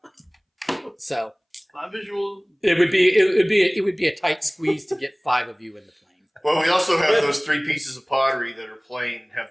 So my visual. it would be a tight squeeze to get 5 of you in the plane. Well, we also have those 3 pieces of pottery that are plain,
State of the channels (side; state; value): both; identical; correlation 1.00